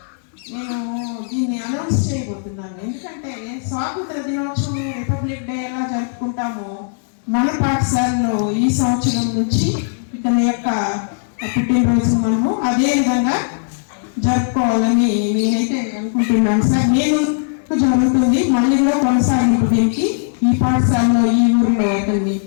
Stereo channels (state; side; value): silent; right; 67 dB below the other